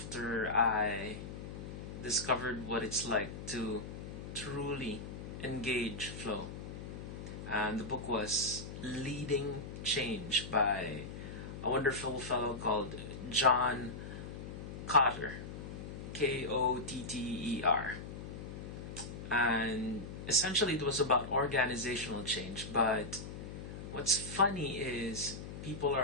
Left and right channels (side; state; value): left; noise; hum, 9 dB below the sound